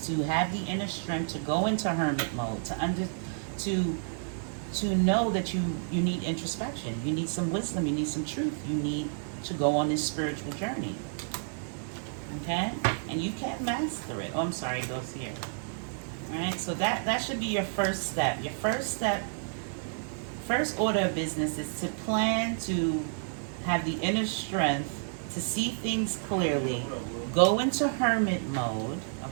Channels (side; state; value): left; silent; digital silence